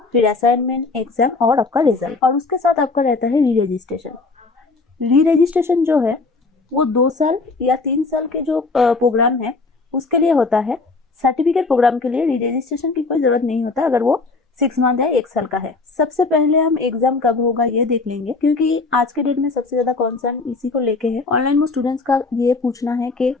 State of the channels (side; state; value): right; quieter; 3.8 dB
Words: फिर असाइनमेंट, एग्जाम और आपका रिजल्ट, और उसके साथ आपका रहता है री रजिस्ट्रेशन। री रजिस्ट्रेशन जो है वो 2 साल या 3 साल के जो प्रोग्राम है उसके लिए होता है। सर्टिफिकेट प्रोग्राम के लिए री रजिस्ट्रेशन की कोई जरूरत नहीं होता अगर वो 6 मंथ है, 1 साल का है। सबसे पहले हम एग्जाम कब होगा ये देख लेंगे, क्योंकि आज के डेट में सबसे ज्यादा कंसर्न इसी को लेके है। ऑनलाइन में स्टूडेंट्स का ये पूछना है कि